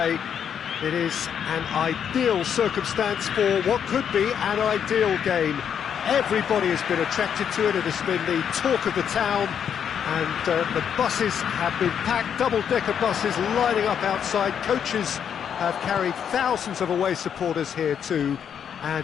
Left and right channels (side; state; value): right; quieter; 8.2 dB